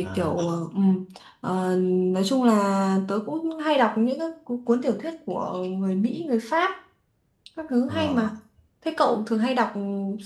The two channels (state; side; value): identical; both; correlation 1.00